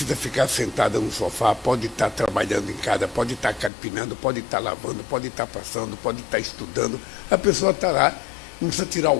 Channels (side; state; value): right; drops out; at 3.7 s